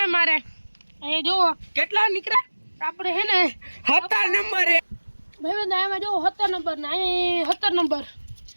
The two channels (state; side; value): inverted; both; correlation -1.00